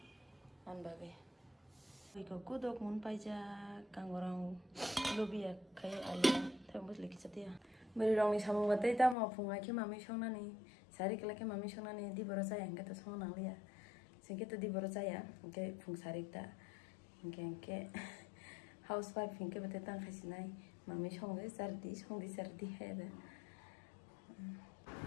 an bagai. Iko kudok mun paija kangorang lobia kai ali thambus leki chatia. Beri rong ni samung batai ta ma phungai ke mami songna ni sari kala ke mami songna ni di borosa yang kata song nang lia singke to di borosa ya ke phung sari ta ke housewife hinke batai tang khasinai mami songai sardi he da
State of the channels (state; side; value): drops out; right; at 9.2 s